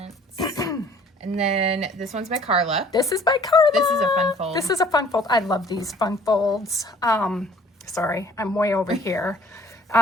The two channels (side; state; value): both; normal; correlation 0.54